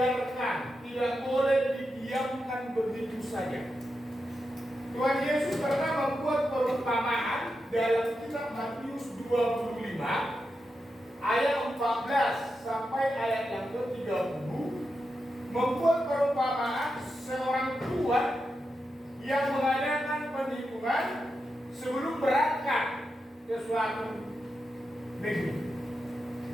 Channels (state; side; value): normal; both; correlation 0.88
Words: tidak boleh didiamkan begitu saja. Tuhan Yesus pernah membuat perumpamaan dalam kitab Matius 25 ayat 14 sampai ayat yang ke-30, membuat perumpamaan seorang tuan yang mengadakan perhitungan sebelum berangkat ke suatu negeri.